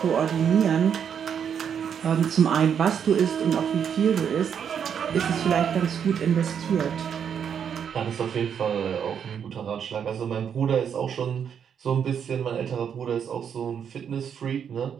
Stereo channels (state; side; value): quieter; left; 7.9 dB